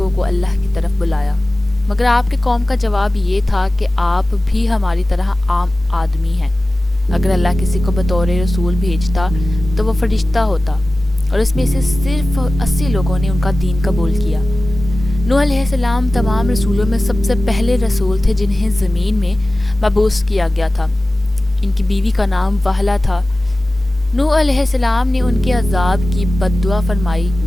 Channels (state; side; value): normal; both; correlation 0.97